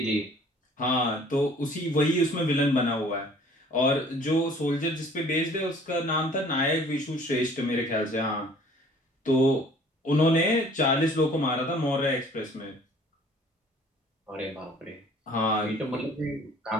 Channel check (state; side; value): normal; both; correlation 0.53